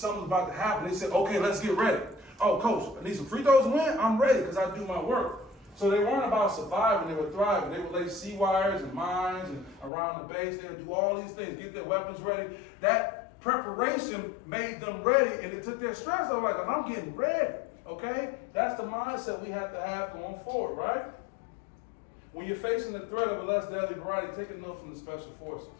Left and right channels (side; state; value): right; drops out; at 9.9 s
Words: was about to happen, they said, okay, let's get ready. Oh, coach, I need some free throws to win? I'm ready because I do my work. So they weren't about surviving, they were thriving. They would lay sea wires and mines and around the base. They would do all these things, get their weapons ready. That preparation made them ready, and it took their stress off. Like, I'm getting ready, okay? That's the mindset we have to have going forward, right? When you're facing the threat of a less deadly variety, take a note from the special forces.